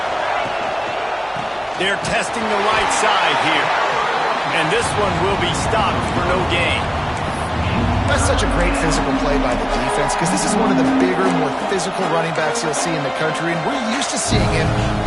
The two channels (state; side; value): identical; both; correlation 1.00